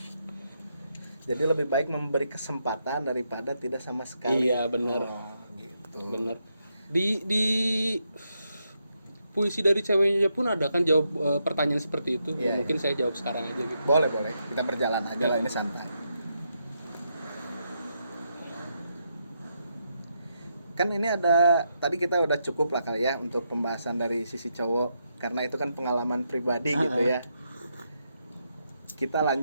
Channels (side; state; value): both; inverted; correlation -0.81